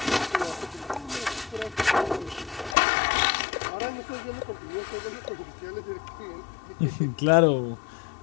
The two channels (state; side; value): drops out; right; at 2.8 s